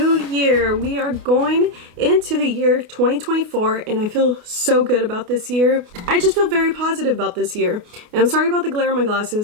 year. We are going into the year 2024 and I feel so good about this year. I just feel very positive about this year. And I'm sorry about the glare in my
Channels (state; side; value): late; left; 28 ms